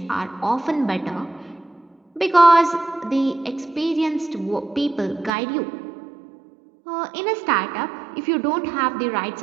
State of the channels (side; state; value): left; drops out; at 5.3 s